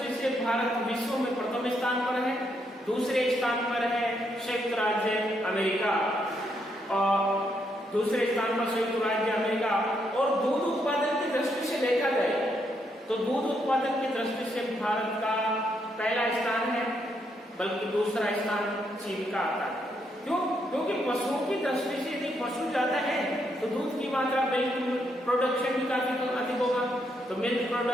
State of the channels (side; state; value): both; normal; correlation 0.77